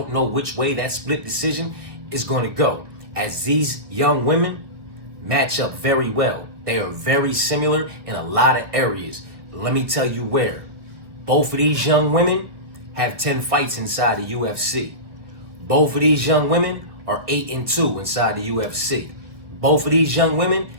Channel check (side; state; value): left; late; 1.5 ms